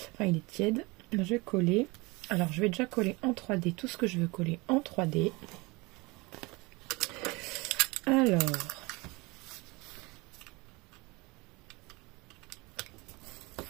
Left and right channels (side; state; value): left; quieter; 24.9 dB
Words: Enfin, il est tiède. Je vais coller. Alors, je vais déjà coller en 3D tout ce que je veux coller en 3D. Alors,